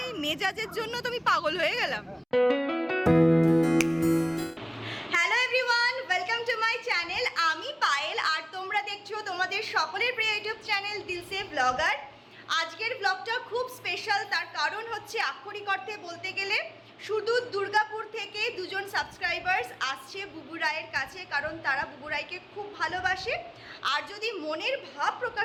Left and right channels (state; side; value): identical; both; correlation 1.00